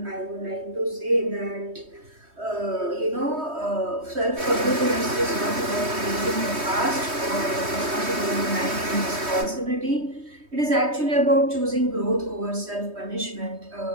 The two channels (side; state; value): left; late; 3.2 ms